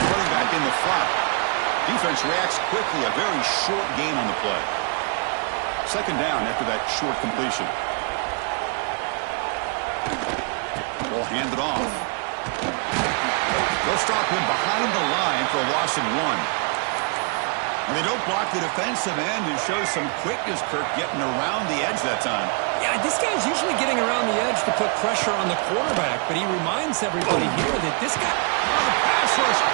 running back in the flat. Defense reacts quickly, a very short gain on the play. Second down after that short completion. Ball handed off. They'll stop him behind the line for a loss of 1. And they don't block the defensive end, who shows some quickness, Kirk, getting around the edge that time. Yeah, this guy's usually getting around the edge to put pressure on the quarterback, but he reminds everybody here that this guy... The pass rush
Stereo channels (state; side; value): quieter; left; 37.9 dB